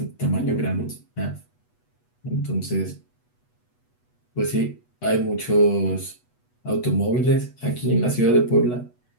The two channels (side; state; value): right; late; 8.2 ms